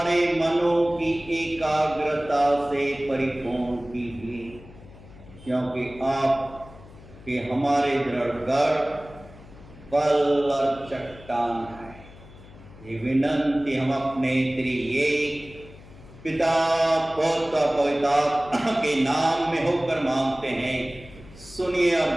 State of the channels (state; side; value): noise; left; hum, 20 dB below the sound